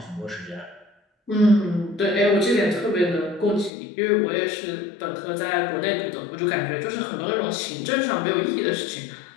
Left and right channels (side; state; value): right; drops out; at 3.7 s